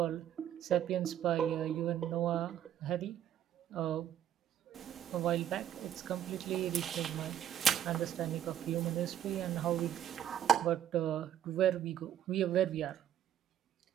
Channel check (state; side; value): quieter; left; 10.6 dB